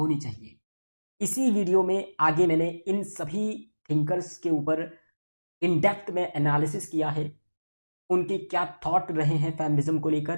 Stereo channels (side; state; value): both; inverted; correlation -1.00